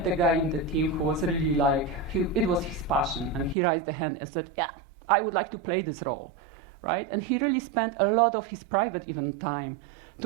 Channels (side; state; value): left; drops out; at 3.6 s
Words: the guy in the team who was really like, it was his passion, and he raised the hand and said, yeah, I would like to play this role, right? And he really spent a lot of his private even time